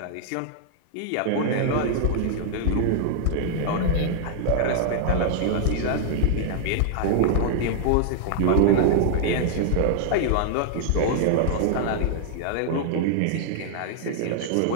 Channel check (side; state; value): both; different; correlation -0.01